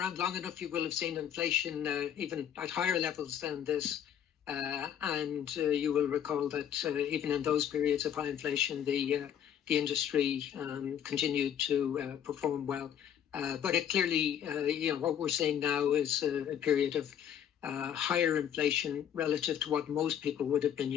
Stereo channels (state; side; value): quieter; right; 9.4 dB